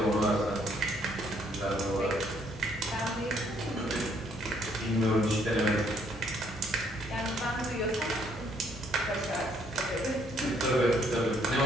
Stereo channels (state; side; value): normal; both; correlation 0.67